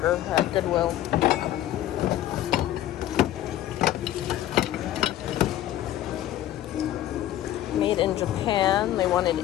at Goodwill. Made in Japan, they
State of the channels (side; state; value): right; quieter; 13.1 dB